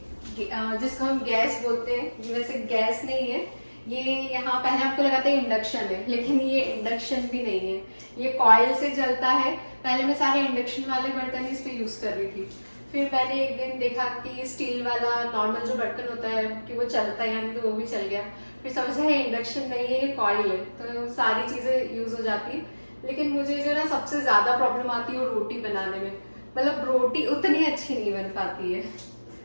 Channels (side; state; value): both; inverted; correlation -1.00